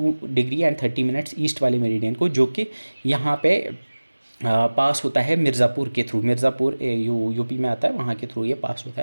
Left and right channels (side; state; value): both; inverted; correlation -1.00